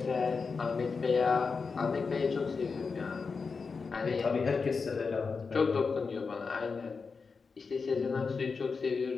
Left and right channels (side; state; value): right; quieter; 4.9 dB